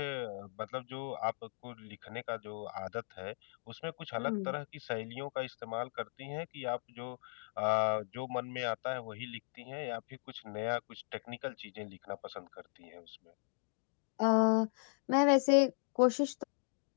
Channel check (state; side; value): silent; right; digital silence